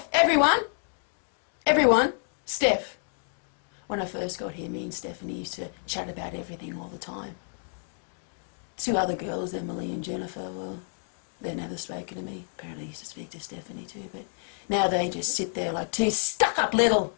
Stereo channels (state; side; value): silent; right; 59 dB below the other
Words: everyone, Steph. When I first got here, me and Stephanie used to chat about everything all the time. Two other girls, Emily and Jennifer, well, they never spoken to me. Apparently I used to speak to Stephanie too, but now they just sit there like two stuck-up little...